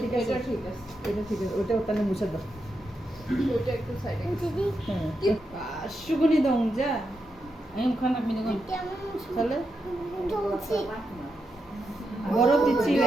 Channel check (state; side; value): normal; both; correlation 0.85